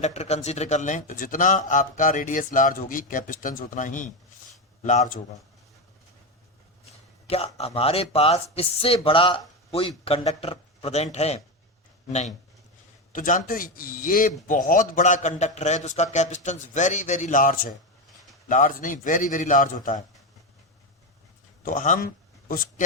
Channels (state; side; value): normal; both; correlation 0.13